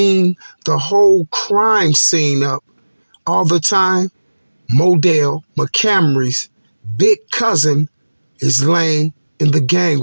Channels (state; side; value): inverted; both; correlation -1.00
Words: the whole crime scene up all the time. Modell McCamry's big cousin is laying in the